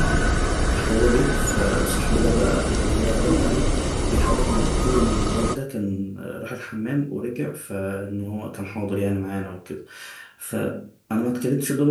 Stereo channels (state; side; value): identical; both; correlation 1.00